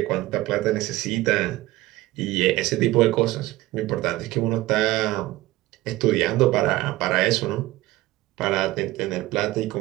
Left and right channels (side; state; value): left; quieter; 17.7 dB